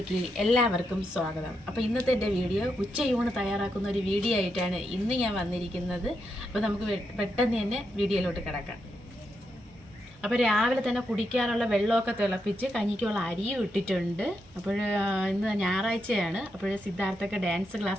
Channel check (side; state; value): both; normal; correlation 0.83